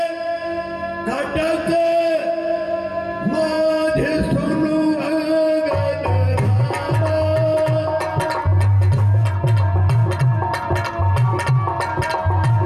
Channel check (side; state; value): both; identical; correlation 1.00